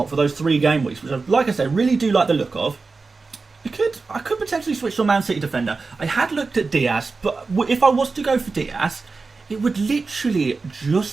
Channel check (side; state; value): left; quieter; 4.1 dB